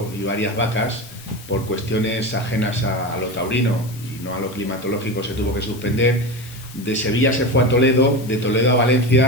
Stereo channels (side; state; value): left; noise; hiss, 19 dB below the sound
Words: y varias vacas por cuestiones ajenas a lo taurino y no a lo climatológico, se tuvo que suspender. De Sevilla se fue a Toledo, de Toledo a